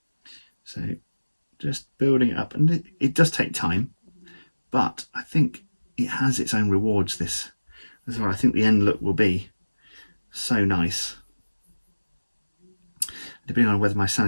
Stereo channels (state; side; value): inverted; both; correlation -1.00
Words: So just building it up, and it does take time, but I think it has its own rewards, this as well. I think the end look will be so nice. Depending on whether my